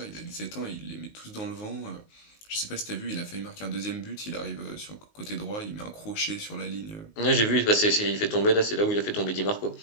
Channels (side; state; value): right; late; 19 ms